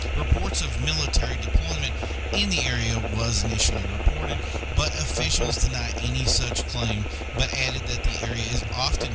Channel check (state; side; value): identical; both; correlation 1.00